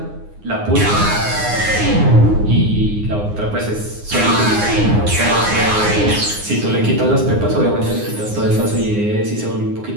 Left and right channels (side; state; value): left; late; 9.7 ms